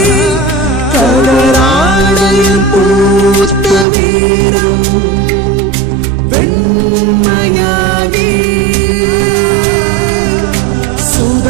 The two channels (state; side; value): drops out; left; at 3.9 s